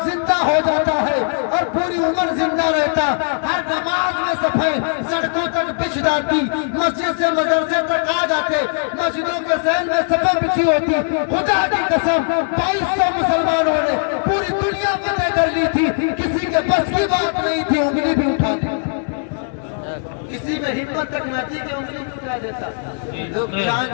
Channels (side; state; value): right; silent; 66 dB below the other